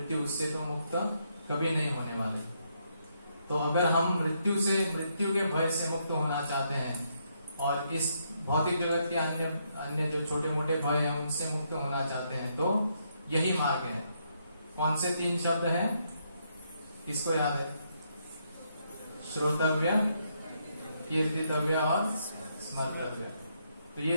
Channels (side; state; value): both; inverted; correlation -0.76